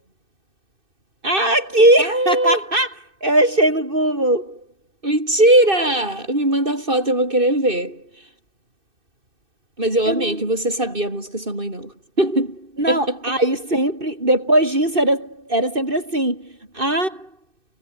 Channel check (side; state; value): left; late; 2.6 ms